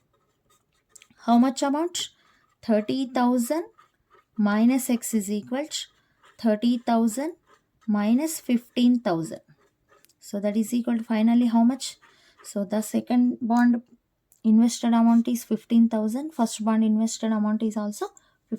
how much amount? 30,000 minus x is equal to 30,000 minus 15,000. So that is equal to finally how much? So the second bond invested amount is 15,000. First bond invested amount is also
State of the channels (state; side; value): identical; both; correlation 1.00